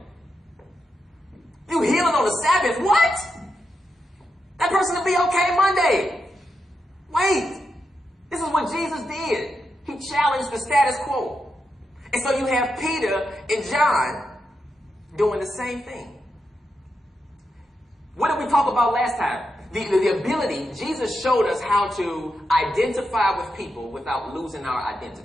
You healing on the Sabbath? What? That person will be okay Monday. Wait. This is what Jesus did. He challenged the status quo. And so you have Peter and John doing the same thing. What did we talk about last time? The ability, Jesus showed us how to identify with people without losing our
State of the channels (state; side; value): normal; both; correlation 0.86